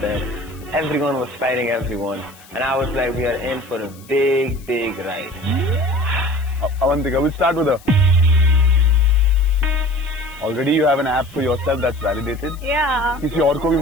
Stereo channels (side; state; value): left; noise; hiss, 24 dB below the sound